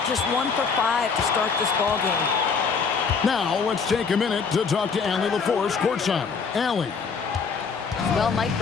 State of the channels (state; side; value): quieter; right; 5.5 dB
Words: Just 1 for 5 to start this ball game. Now let's take a minute to talk to Allie LaForce courtside. Allie. Well, Mike